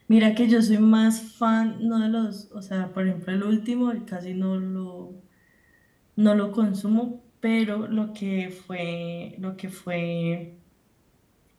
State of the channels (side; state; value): both; identical; correlation 1.00